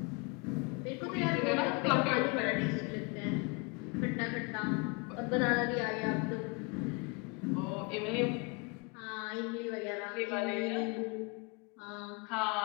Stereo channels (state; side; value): quieter; right; 30.4 dB